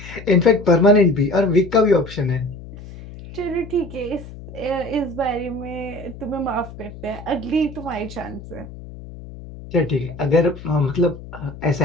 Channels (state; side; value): noise; left; hum, 15 dB below the sound